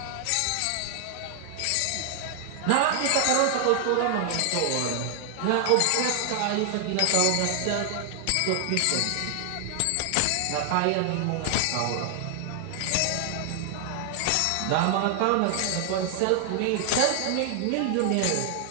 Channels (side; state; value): both; different; correlation 0.00